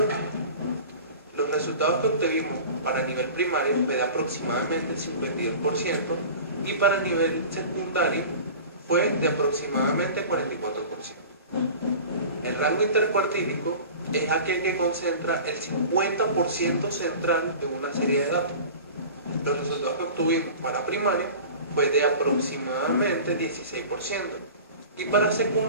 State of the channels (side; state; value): both; inverted; correlation -0.38